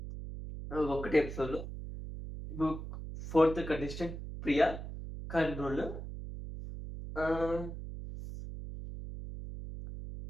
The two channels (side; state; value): right; noise; hum, 9 dB below the sound